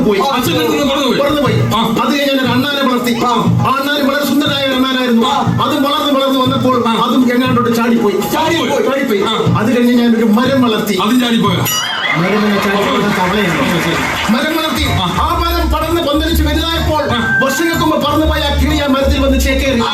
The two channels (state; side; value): identical; both; correlation 1.00